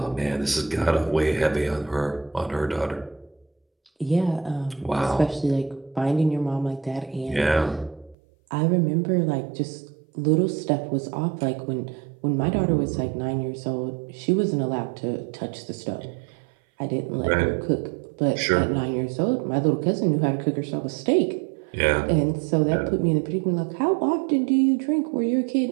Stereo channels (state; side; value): drops out; left; at 8.2 s